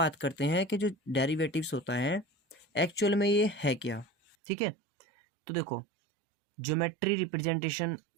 करते हैं कि जो डेरिवेटिव्स होता है एक्चुअल में ये है क्या, ठीक है। तो देखो ज्योमेट्री रिप्रेजेंटेशन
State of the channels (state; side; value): drops out; left; at 4.4 s